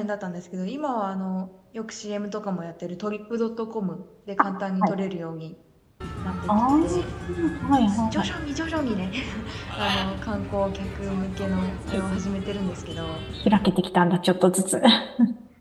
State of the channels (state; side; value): identical; both; correlation 1.00